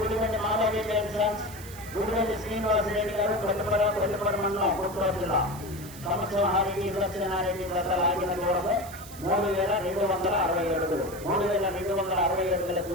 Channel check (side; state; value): right; noise; hiss, 17 dB below the sound